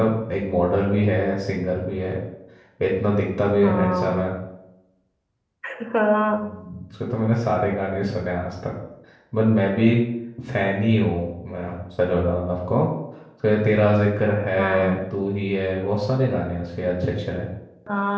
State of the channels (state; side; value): identical; both; correlation 1.00